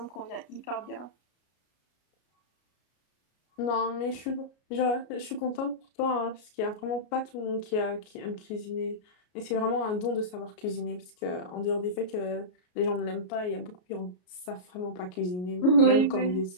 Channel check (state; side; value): late; right; 33 ms